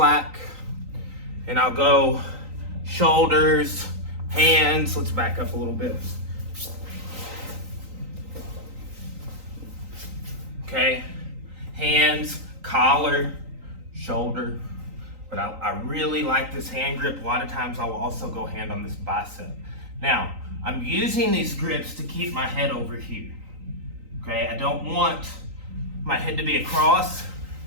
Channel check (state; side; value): late; left; 3.9 ms